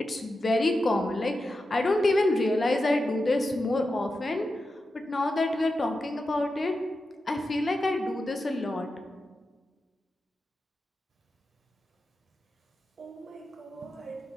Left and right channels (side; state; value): both; normal; correlation 0.90